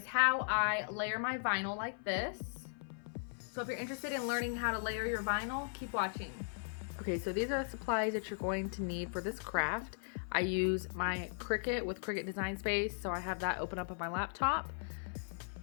how I layer my vinyl like this. So if you're interested in learning how to layer your vinyl, keep watching. Okay, so these are the supplies that you're going to need for this craft. I use my Cricut with Cricut Design Space, so I have that open up on my laptop.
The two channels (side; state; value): right; silent; 53 dB below the other